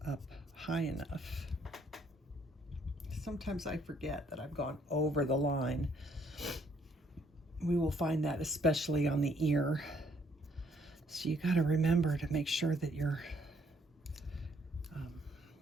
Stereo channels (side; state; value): both; normal; correlation 0.67